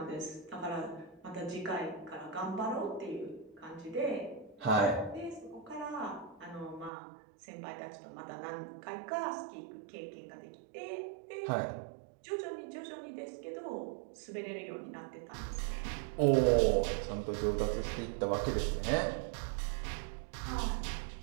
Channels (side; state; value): left; drops out; at 6.9 s